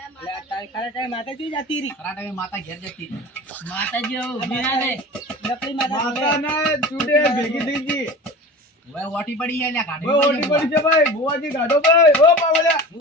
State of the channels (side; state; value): both; normal; correlation 0.35